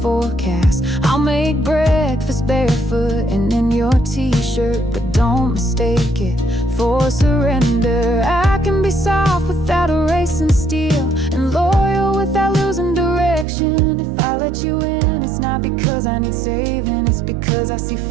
I'll make breakfast barefoot and in your t-shirt, but don't mistake it for surrender. I can be soft without erasing steel, and loyal without losing direction. If I let you in, it's not because I need saving, it's because I see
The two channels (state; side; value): drops out; left; at 13.5 s